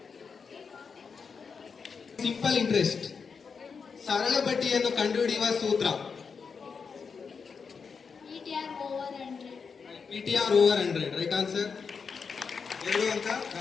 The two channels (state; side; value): quieter; right; 5.6 dB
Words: Simple interest. ಸರಳ ಬಡ್ಡಿಯನ್ನು ಕಂಡುಹಿಡಿಯುವ ಸೂತ್ರ. PTR over 100. Right answer. 2 ಅಂಕ